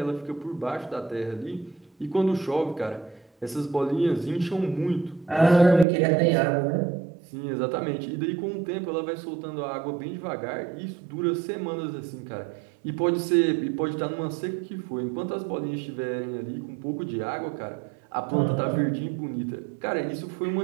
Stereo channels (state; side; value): drops out; left; at 5.9 s